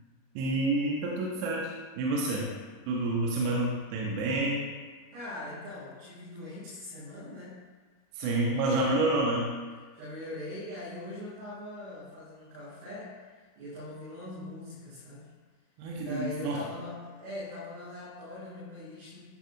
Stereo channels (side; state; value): left; late; 38 ms